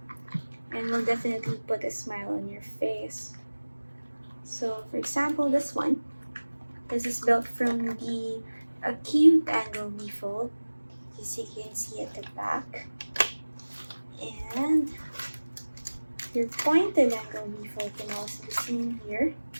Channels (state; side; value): inverted; both; correlation -1.00